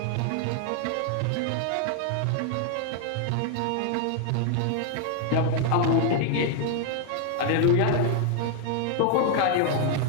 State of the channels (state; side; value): different; both; correlation 0.00